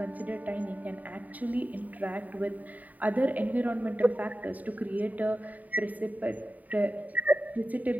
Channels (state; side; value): late; left; 0.076 ms